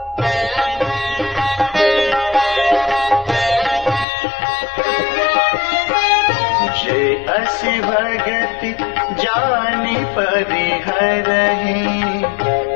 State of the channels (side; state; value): right; drops out; at 4.0 s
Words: असी भगति जानि परिहरहि,